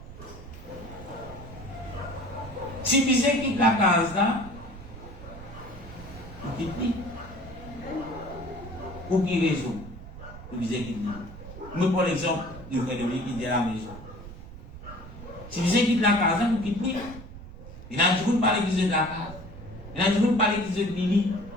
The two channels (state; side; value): noise; right; rumble, 14 dB below the sound